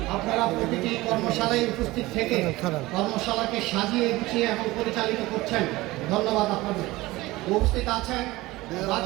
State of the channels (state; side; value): quieter; left; 19.5 dB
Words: আপনারা প্রতিটি কর্মশালায় উপস্থিত থেকে কর্মশালাকে সাজিয়ে গুছিয়ে এবং পরিচালিত করছেন। ধন্যবাদ আপনাদের। উপস্থিত আছেন